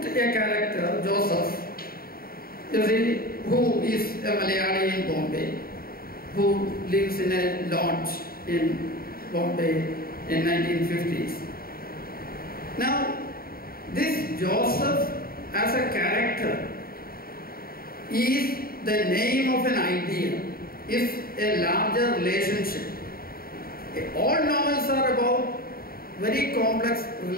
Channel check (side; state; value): right; late; 0.43 ms